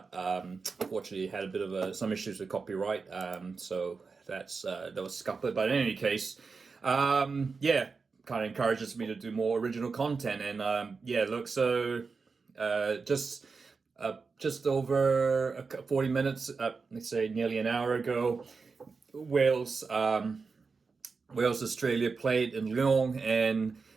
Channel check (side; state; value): left; quieter; 4.7 dB